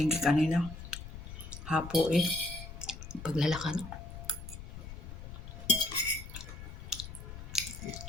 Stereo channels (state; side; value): noise; left; rumble, 11 dB below the sound